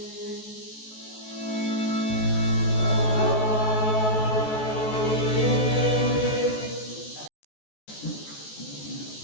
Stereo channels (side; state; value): right; late; 14 ms